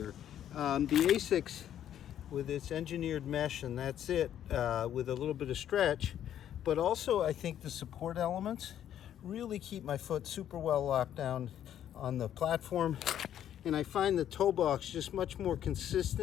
The ASICS with its engineered mesh, and that's it, with a little bit of stretch, but also I think the support elements really keep my foot super well locked down on the platform, and I find the toe box just much more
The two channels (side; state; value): right; quieter; 10.6 dB